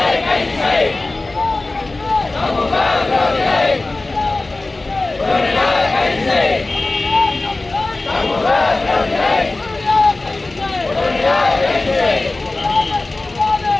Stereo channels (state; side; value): quieter; right; 3.1 dB